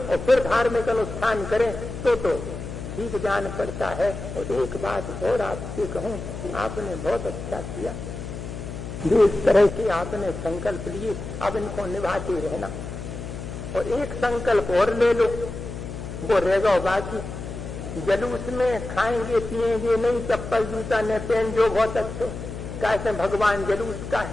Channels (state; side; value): noise; left; hum, 8 dB below the sound